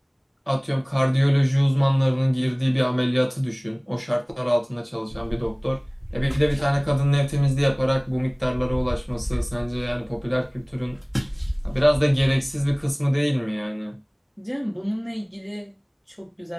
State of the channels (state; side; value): identical; both; correlation 1.00